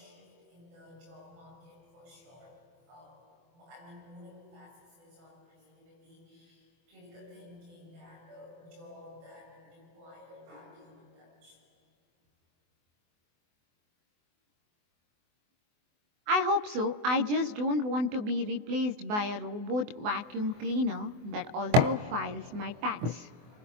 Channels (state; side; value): late; left; 24 ms